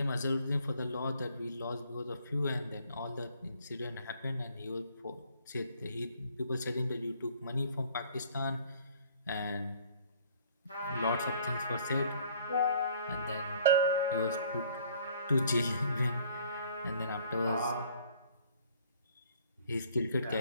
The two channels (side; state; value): both; inverted; correlation -0.58